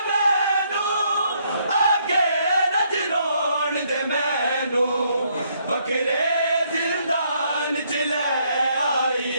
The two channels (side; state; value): both; inverted; correlation -0.71